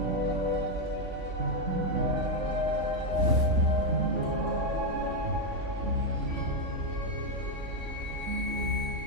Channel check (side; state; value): left; late; 3.5 ms